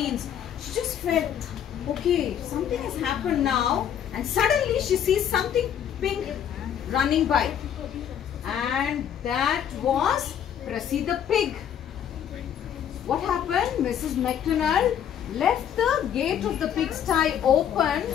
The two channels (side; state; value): right; quieter; 9.3 dB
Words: She just felt, okay, something has happened now, and suddenly she sees something pink running by. And that was Prissy the pig. what happened? Mrs. McDonald left the gate of the pigsty open